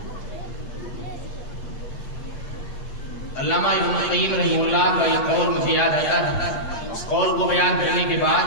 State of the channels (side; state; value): right; late; 8.8 ms